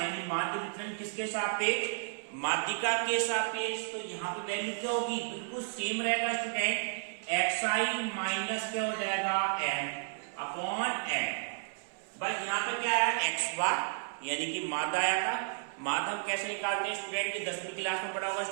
माध्य विचलन किसके सापेक्ष, माध्यिका के सापेक्ष। तो यहाँ पे वैल्यू क्या होगी, बिल्कुल सेम रहेगा स्टूडेंट। xi माइनस क्या हो जाएगा, m अपॉन n। बस यहाँ पे क्या आया, x बार यानी कि माध्य आया था। माध्य हम कैसे निकालते हैं स्टूडेंट, ये 10वीं क्लास में पढ़ा होगा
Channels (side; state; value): left; silent; 56 dB below the other